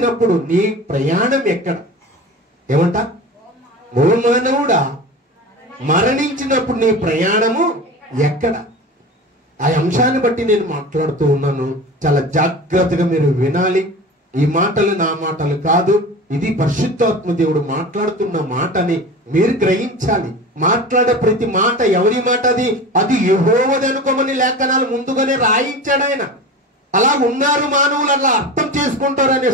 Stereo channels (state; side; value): normal; both; correlation 0.32